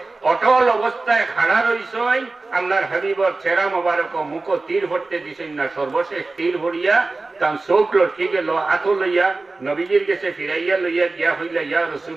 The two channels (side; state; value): left; quieter; 3.5 dB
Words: অটল অবস্থায় খাড়া রইছে আল্লাহর হাবিবর চেহারা মোবারক মুখ তীর ভরতে দিছেন না। সর্বশেষ তীর ভরিয়া তার চোখ লটকি গেল, আতো লইয়া নবীজির গেছে ফিরাইয়া লইয়া গিয়া হইলা ইয়া